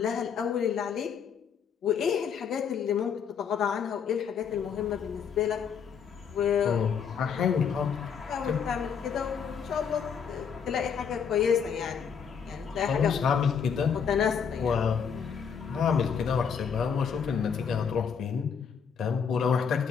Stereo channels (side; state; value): right; quieter; 6.9 dB